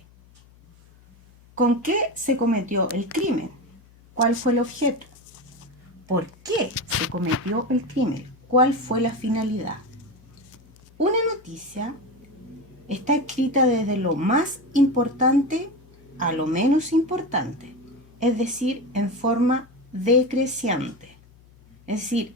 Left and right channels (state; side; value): noise; left; hum, 27 dB below the sound